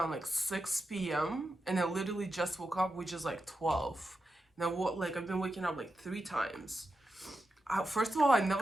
6 p.m. and I literally just woke up, which is 12. And I've been waking up three times. First of all, I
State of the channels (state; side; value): normal; both; correlation 0.89